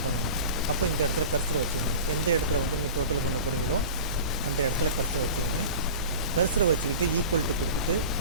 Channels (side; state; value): both; inverted; correlation -0.35